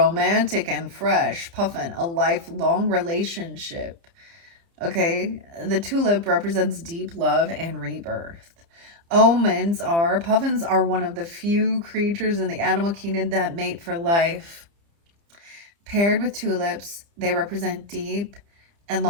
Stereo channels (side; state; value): left; late; 30 ms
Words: and fresh. Puffin, a lifelong relationship. Okay, the tulip represents deep love and rebirth. Puffins are one of the few creatures in the animal kingdom that mate for life. Paired with tulips, they represent deep and